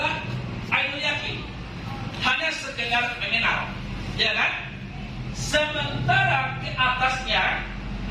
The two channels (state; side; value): identical; both; correlation 1.00